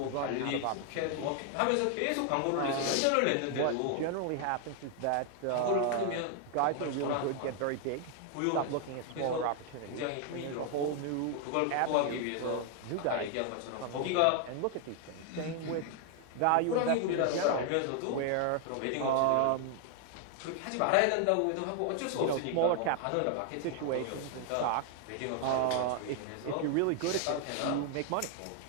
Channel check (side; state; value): both; different; correlation 0.00